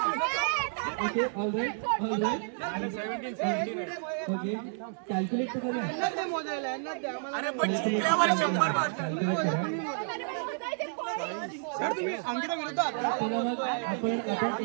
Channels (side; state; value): left; silent; digital silence